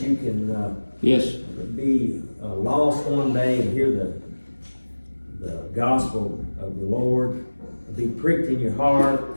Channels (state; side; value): inverted; both; correlation -1.00